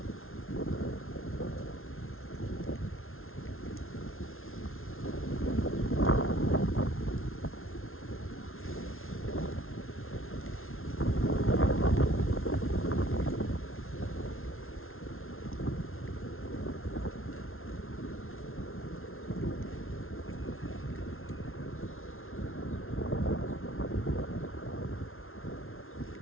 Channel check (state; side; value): late; right; 0.61 ms